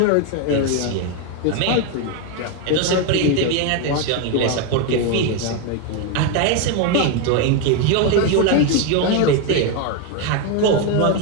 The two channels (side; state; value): both; different; correlation 0.02